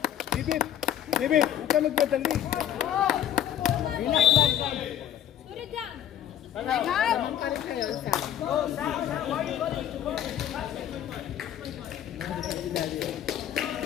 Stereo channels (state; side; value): quieter; right; 10.6 dB